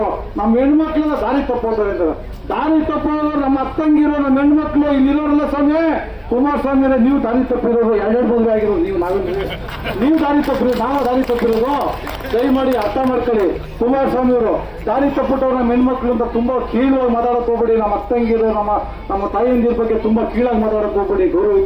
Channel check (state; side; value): identical; both; correlation 1.00